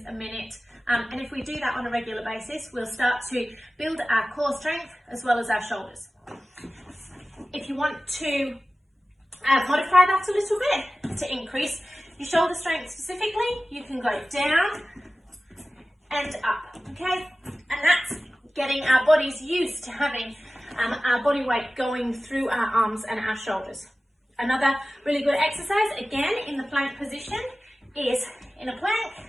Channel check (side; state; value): both; normal; correlation 0.96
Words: a minute, and if we do that on a regular basis, we'll start to build our core strength as well as our shoulders. If you want to modify that a little bit to increase your shoulder strength specifically, you can go down and up, okay? And that's getting our bodies used to having our body weight going through our arms and our shoulders. Another really good exercise, again in the plank position, is in a plank,